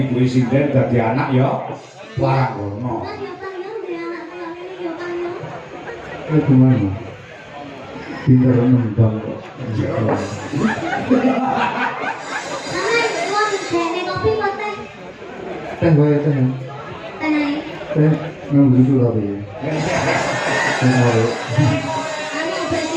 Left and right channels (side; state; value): both; identical; correlation 1.00